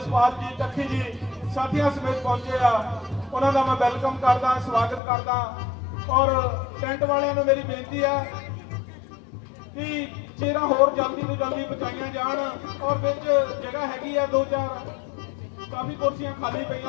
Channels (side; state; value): right; drops out; at 5.0 s